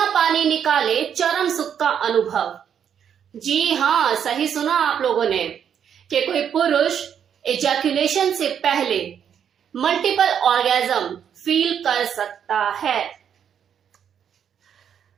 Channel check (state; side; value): quieter; left; 8.4 dB